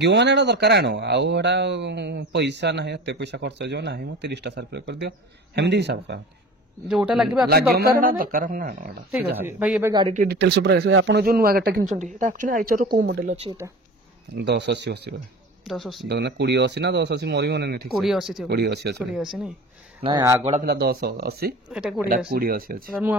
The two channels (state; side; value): normal; both; correlation 0.37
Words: ମାନେ ଏଟା ଦରକାର ଆଣ, ଆଉ ଏଟା ପଇସା ନାହିଁ, ଏତେ ପଇସା ଖର୍ଚ୍ଚ ହେଇଯିବ ନାହିଁ, ମୁଁ 30ଟା ସାର୍ଫି କରିଦିଅ, ସେମିତି ହିସାବ କରନ୍ତି। ଯୋଉଟା ଲାଗିବ ଦରକାର ଠିକ ଅଛି। ଭାଇ ଏବେ ଗାଡି ଟିକେ ଡିଟେଲ୍ସ ଉପରେ ଆସିବେ, ଆପଣ ଯୋଉ ନୂଆ ଗାଡିଟା କିଣିଛନ୍ତି ଏଟା ଆକ୍ଚୁଆଲି ଆଇଚର କୋଉ ମଡେଲ ଅଛି? ଏଟା 1080 1080 2080 ନା 1080 ମୋର ବି ମନେ ନାହିଁ, ଠିକ 2080 ନାଇଁ? ନାଇଁ ଆଗଟା ଥିଲା 1080, ଏଟା 2080 ଅଛି। ନୂଆ